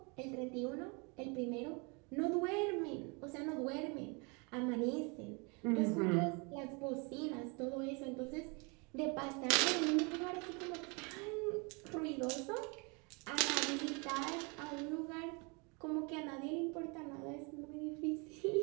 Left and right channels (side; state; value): left; quieter; 31.5 dB